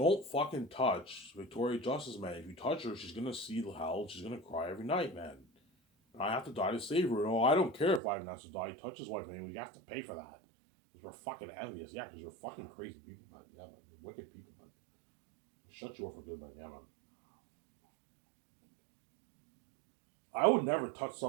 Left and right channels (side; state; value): left; drops out; at 8.0 s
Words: fucking touch Victoria Justice, man. If you touch her, she's gonna see the hell. She's gonna cry every night, man. And I have to die to save her. No, I don't care if Ivan has to die. Touch his wife, man. We have to pay for that. Because we're fucking envious. Yeah, because you're fucking crazy people, man. Yeah, man. You're wicked people, man. Shut you up for good, man. Yeah, man. I would never touch